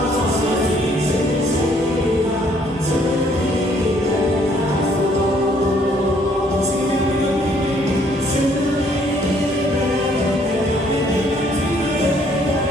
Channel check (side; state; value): both; normal; correlation 0.64